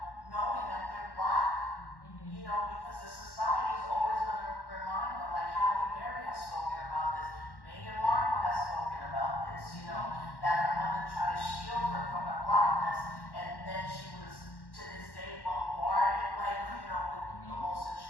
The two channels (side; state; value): right; late; 1.1 ms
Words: knowing that they're black. Because the society is always going to remind them, like Halle Berry has spoken about this, Meghan Markle has spoken about this, that her mother tried to shield her from her blackness, and then she was, to this day, bombarded, with the most